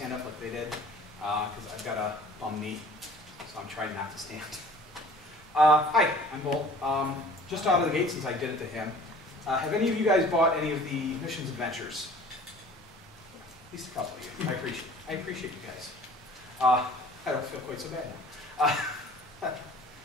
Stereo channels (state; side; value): normal; both; correlation 0.48